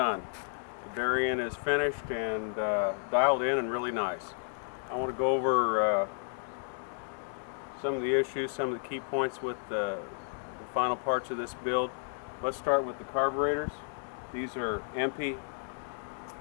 The Berrien is finished and dialed in and really nice. I want to go over some of the issues, some of the key points with the final parts of this build. Let's start with the carburetors. These are Empi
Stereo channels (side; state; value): right; silent; digital silence